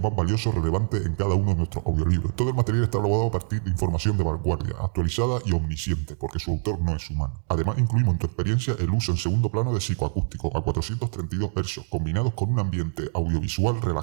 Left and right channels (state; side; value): silent; left; digital silence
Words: más valioso relevante en cada uno de nuestros audiolibros. Todo el material está elaborado a partir de información de vanguardia, actualizada y omnisciente, porque su autor no es humano. Además, incluimos en tu experiencia el uso en segundo plano de psicoacústico a 432 Hz, combinados con un ambiente audiovisual